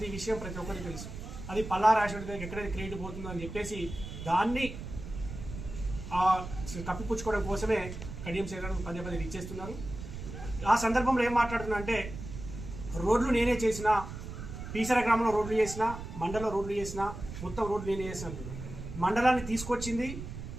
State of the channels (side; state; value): right; noise; rumble, 9 dB below the sound